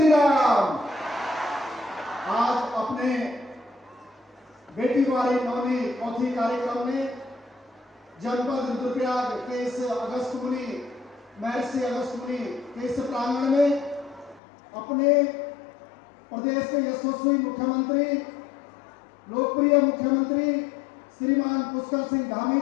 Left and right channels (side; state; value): right; drops out; at 14.4 s